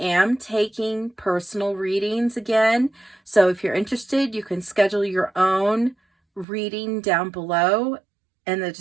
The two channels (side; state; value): left; drops out; at 6.5 s